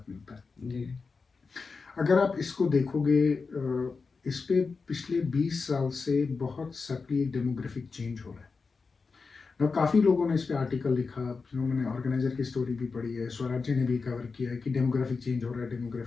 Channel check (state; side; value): quieter; right; 4.6 dB